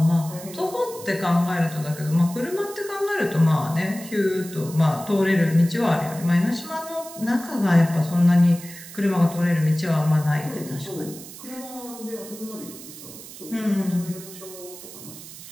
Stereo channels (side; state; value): right; noise; hiss, 15 dB below the sound